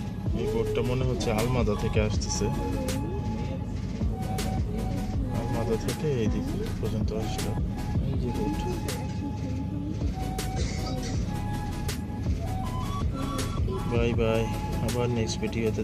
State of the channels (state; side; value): identical; both; correlation 1.00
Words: এই বোটটা মনে হচ্ছে আলমাদা থেকে আসতেছে। আলমাদা থেকে এই দিক পর্যন্ত আসলো এই যে বোট। বাই বাই, আবার নেক্সট ভিডিওতে